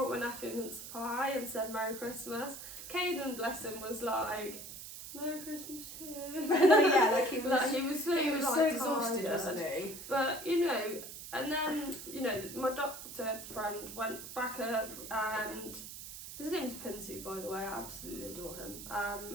my nephew a mince pie and said Merry Christmas. Caden, bless him, was like, Merry Christmas too. Yeah, like he was so exhausted, tired. wasn't he? But, you know, and then, you know, my doctor friend went back up, and his name's Pinsu, by the way, I absolutely adore him.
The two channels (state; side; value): noise; right; hiss, 11 dB below the sound